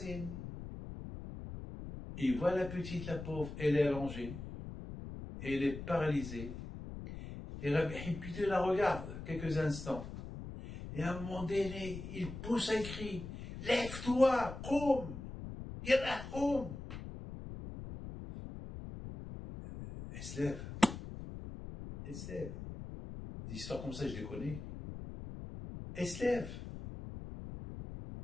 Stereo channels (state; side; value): noise; left; rumble, 10 dB below the sound